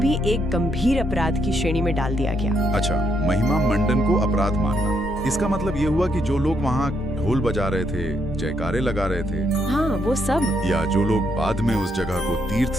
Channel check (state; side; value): normal; both; correlation 0.76